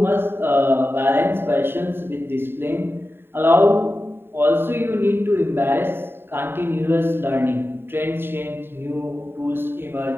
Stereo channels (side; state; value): left; late; 0.11 ms